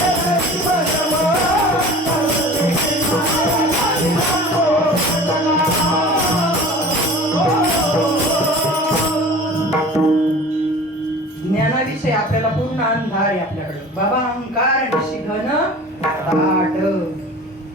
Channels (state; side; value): normal; both; correlation 0.41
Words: विषय आपल्याला पूर्ण अंधार आहे आपल्याकडे. बाबा अहंकार निशिघन ताट.